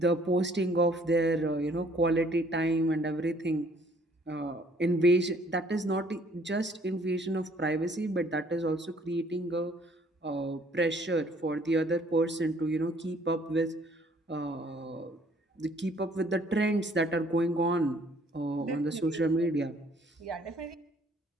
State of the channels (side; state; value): both; normal; correlation 0.61